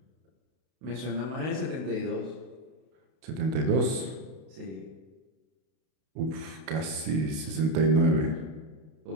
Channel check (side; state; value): left; late; 32 ms